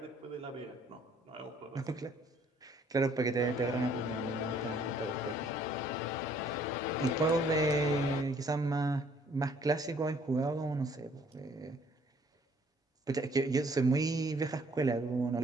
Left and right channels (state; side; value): normal; both; correlation 0.61